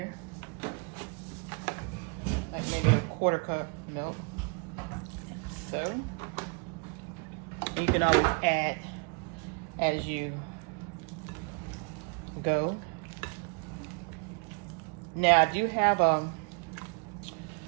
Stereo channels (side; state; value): left; quieter; 36.2 dB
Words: Like maybe a quarter cup milk. So you can always add as you go. Now I do have a